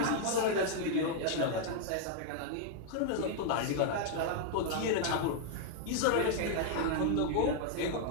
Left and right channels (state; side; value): different; both; correlation 0.00